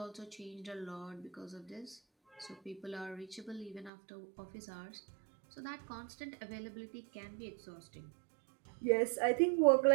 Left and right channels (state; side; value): drops out; left; at 3.9 s